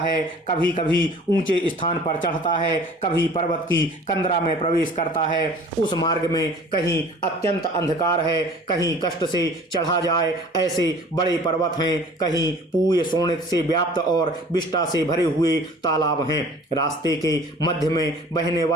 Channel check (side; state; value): both; normal; correlation 0.48